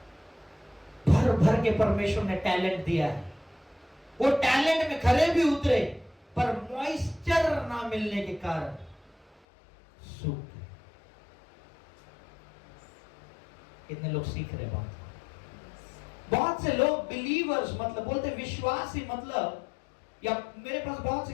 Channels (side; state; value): right; drops out; at 9.4 s